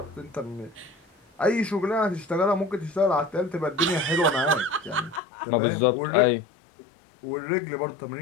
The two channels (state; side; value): drops out; right; at 5.2 s